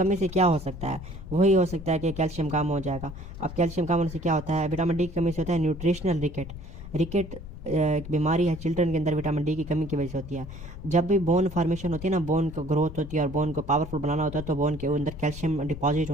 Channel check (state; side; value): noise; left; rumble, 12 dB below the sound